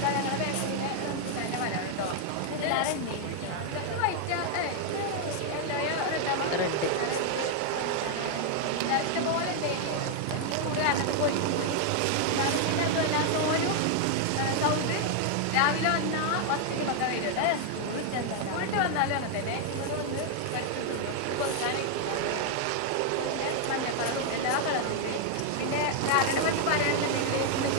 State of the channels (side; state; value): both; different; correlation 0.00